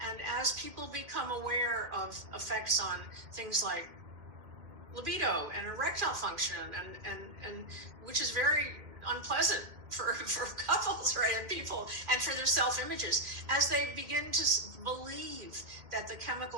as people become aware of effects on things like libido and erectile function, and which is very unpleasant for couples, right, and people, and for their self-images, as they begin to believe that the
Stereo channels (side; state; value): left; late; 2.1 ms